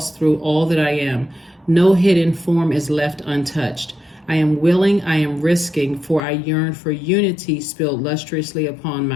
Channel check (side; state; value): right; drops out; at 6.2 s